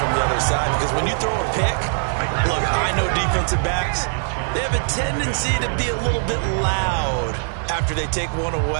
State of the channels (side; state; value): left; silent; digital silence